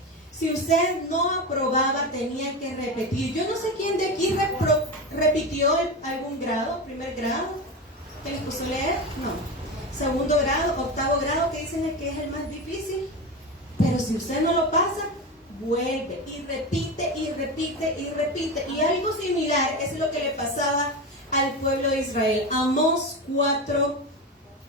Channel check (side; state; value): both; normal; correlation 0.21